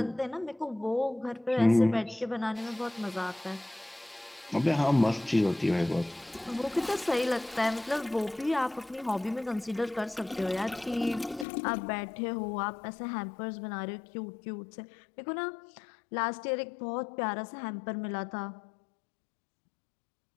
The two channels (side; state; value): right; drops out; at 11.5 s